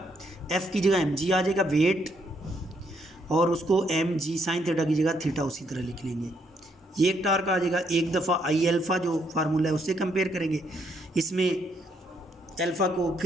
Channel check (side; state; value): both; normal; correlation 0.73